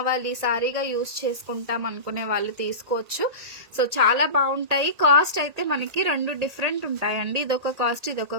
సారీగా యూజ్ చేసుకుంటాం అనుకునే వాళ్ళు తీసుకోవచ్చు. సో చాలా బాగుంటాయి. కాస్ట్ అయితే మనకి 2 డిఫరెంట్ ఉంటాయండి. ఇదొక కాస్ట్, ఇదొక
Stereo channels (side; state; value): left; late; 1.8 ms